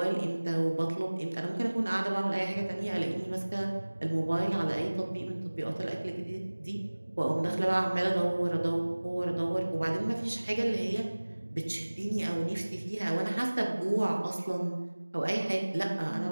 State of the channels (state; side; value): inverted; both; correlation -1.00